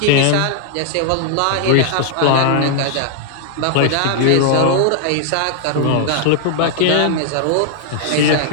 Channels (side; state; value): both; different; correlation -0.01